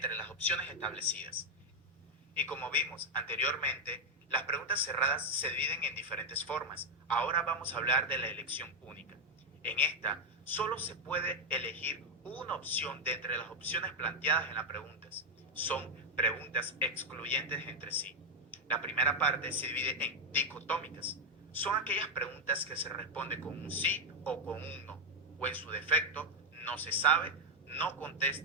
las opciones establecidas. Y como vimos anteriormente, las preguntas cerradas se dividen en diferentes formas. Ahora vamos a hablar de la elección única. En esta, solo se puede elegir una opción de entre las opciones planteadas en las preguntas. Son preguntas excluyentes entre sí. La primera parte se divide en dicotómicas. Son aquellas preguntas que se responden con un sí o con un no, o en su defecto, no se sabe, no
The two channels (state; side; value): normal; both; correlation 0.04